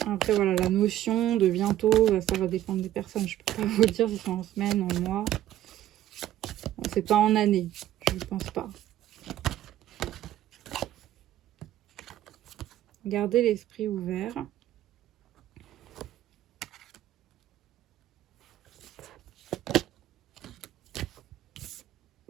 Après, voilà, la notion de bientôt, ça va dépendre des personnes. Je peux pas vous dire si c'est en semaine, en mois. Bon, c'est pas en année. pense pas. Gardez l'esprit ouvert.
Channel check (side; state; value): left; quieter; 12.9 dB